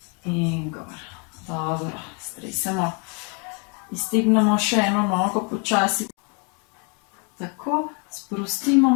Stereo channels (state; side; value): quieter; right; 35.3 dB